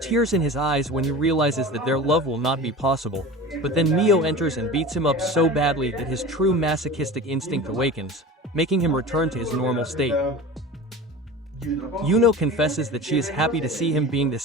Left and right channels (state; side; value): normal; both; correlation 0.34